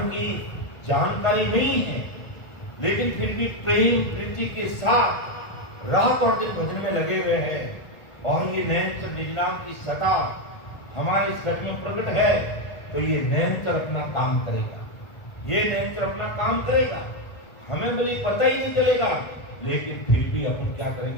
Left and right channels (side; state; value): right; late; 1.4 ms